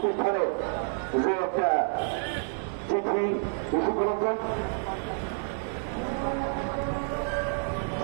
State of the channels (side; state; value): left; silent; digital silence